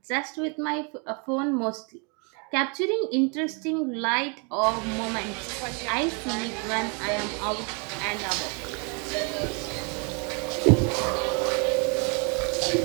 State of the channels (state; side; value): quieter; left; 35.4 dB